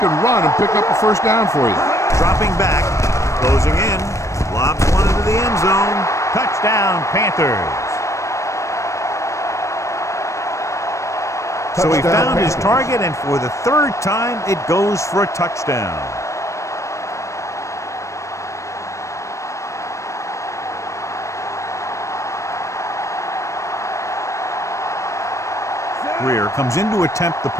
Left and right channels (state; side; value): late; right; 0.15 ms